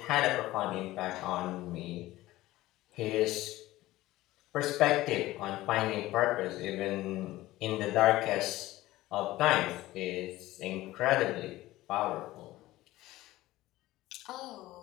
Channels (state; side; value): quieter; right; 17.0 dB